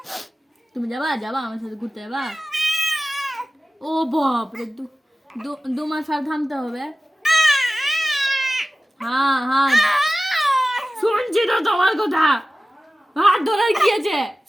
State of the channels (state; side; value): normal; both; correlation 0.96